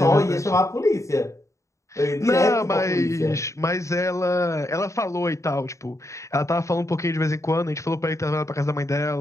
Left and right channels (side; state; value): right; late; 0.15 ms